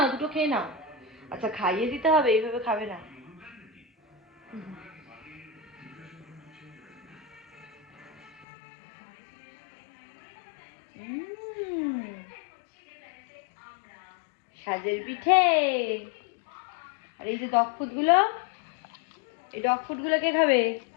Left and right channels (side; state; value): right; drops out; at 8.5 s